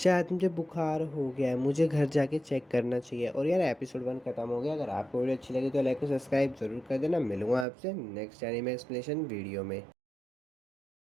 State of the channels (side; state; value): left; drops out; at 7.7 s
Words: मुझे बुखार हो गया है, मुझे घर जाके चेक करना चाहिए। और यार एपिसोड 1 खत्म हो गया। अगर आपको वीडियो अच्छी लगी तो लाइक और सब्सक्राइब ज़रूर कर देना। मिलूंगा आपसे नेक्स्ट एनीमे एक्सप्लेनेशन वीडियो में।